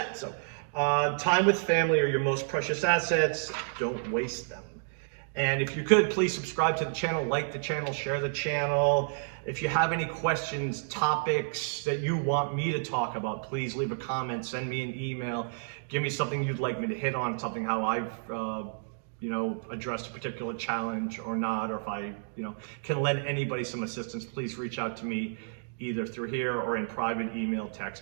So time with family are your most precious assets. Don't waste them. And if you could, please subscribe to the channel, like the channel, share the channel. If you have any questions, topics that you want me to talk about, please leave a comment, send me an email, give me something you'd like me to hit on, something how I've you know, addressed a particular challenge or not, or if I, you know, can lend anybody some assistance, please reach out to me either through here or in private email,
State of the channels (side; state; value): left; silent; digital silence